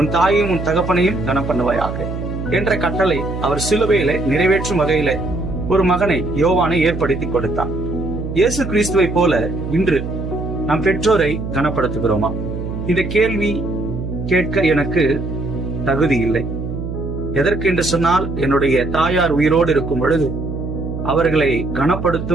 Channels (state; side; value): noise; right; hum, 6 dB below the sound